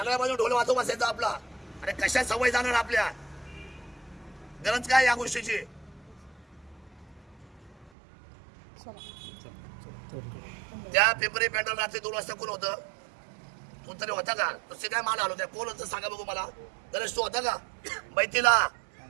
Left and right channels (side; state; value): left; drops out; at 7.9 s